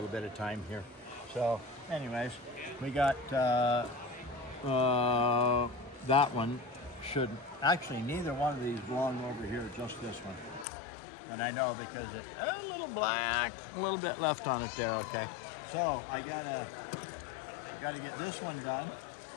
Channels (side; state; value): right; drops out; at 10.7 s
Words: bit of time here. So, anyways, we got that one. Should actually neither one of these belong over here, just this one. And I know because it's a little black, a little bit left on it there. Okay, so I gotta get this one done.